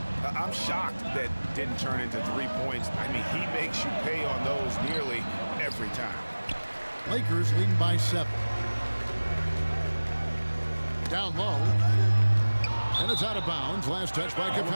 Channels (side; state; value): both; inverted; correlation -1.00